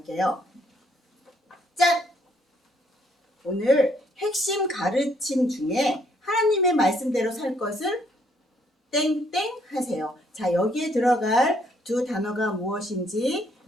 짠! 오늘 핵심 가르침 중에 하나님의 말씀대로 살 것을 땡땡 하세요. 자, 여기에 들어갈 두 단어가 무엇인지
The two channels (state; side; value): normal; both; correlation 0.68